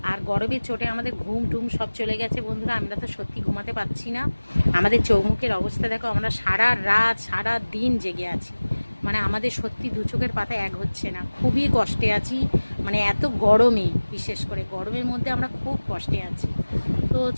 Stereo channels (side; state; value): both; inverted; correlation -1.00